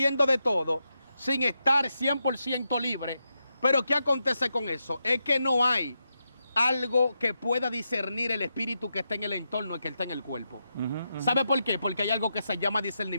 de todo, sin estar 100% libre. Pero ¿qué acontece con eso? Es que no hay algo que pueda discernir el espíritu que está en el entorno y que está en el cuerpo. ¿Sabe por qué? Porque hay algo que se llama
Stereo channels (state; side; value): inverted; both; correlation -0.85